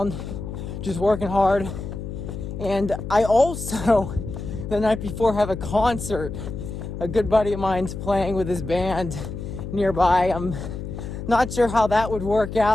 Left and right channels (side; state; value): left; noise; hum, 7 dB below the sound